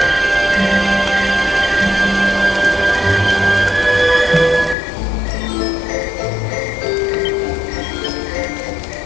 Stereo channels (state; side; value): drops out; right; at 4.8 s